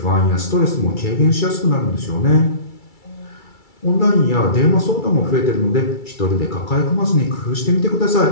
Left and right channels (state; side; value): late; right; 2.3 ms